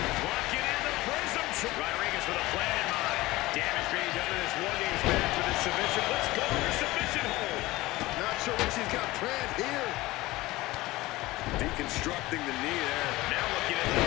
she's got planned here. Deconstructing the knee there. Now looking at the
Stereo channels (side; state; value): right; quieter; 19.1 dB